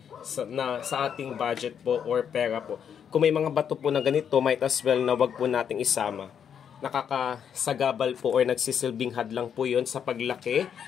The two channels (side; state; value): right; quieter; 8.1 dB